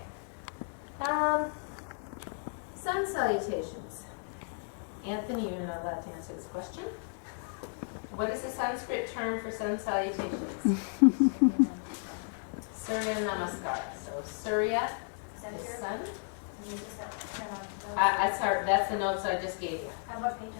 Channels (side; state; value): right; silent; 56 dB below the other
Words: Sun salutations. Anthony, you're not allowed to answer this question. What is the Sanskrit term for sun salutations? Surya Namaskar. So Surya is sun. Sorry, that's the notes I just gave you. What page,